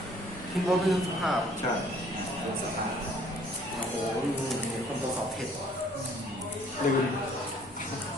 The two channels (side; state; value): both; normal; correlation 0.59